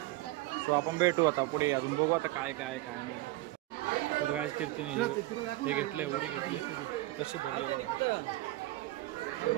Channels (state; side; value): quieter; left; 18.4 dB